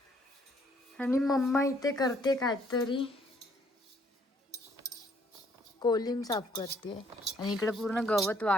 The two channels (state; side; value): normal; both; correlation 0.65